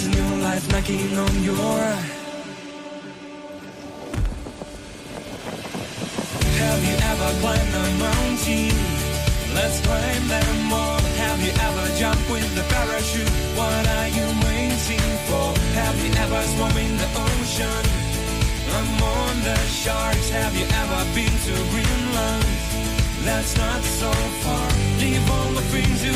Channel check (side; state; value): both; identical; correlation 1.00